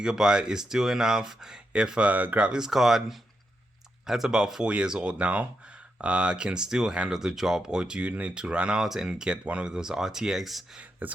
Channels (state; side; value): normal; both; correlation 0.85